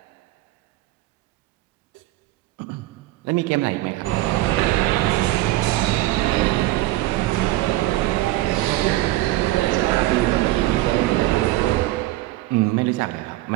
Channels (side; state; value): left; quieter; 17.3 dB